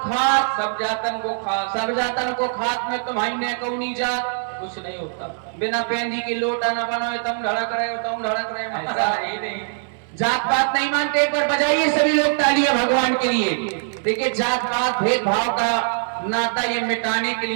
सब जातन को खास, सब जातन को खात में तुम्हारी ने कौनी जात। कुछ नहीं होता। बिना पेंदी की लोटा न बनाओ तुम धड़क रहे हो, तुम धड़क रहे हो। ऐसा ही नहीं। जात पात नहीं मानते। एक बार बजाइए सभी लोग तालियां भगवान के लिए। देखिए जात पात भेदभाव का नाता ये मिटाने के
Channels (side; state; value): left; silent; digital silence